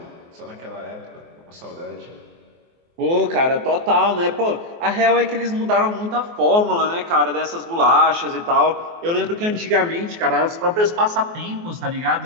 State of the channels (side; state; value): left; late; 24 ms